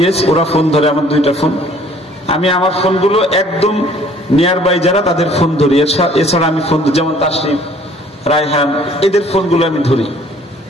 ওরা ফোন ধরে আমার 2টা ফোন। আমি আমার ফোনগুলো একদম নিয়ার বাই যারা তাদের ফোন ধরি, এছাড়া আমি ফোন যেমন তাসরিফ, রায়হান, এদের ফোনগুলো আমি ধরি।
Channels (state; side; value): normal; both; correlation 0.56